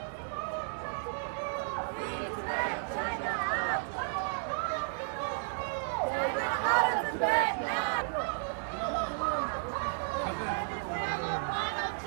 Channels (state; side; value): silent; left; digital silence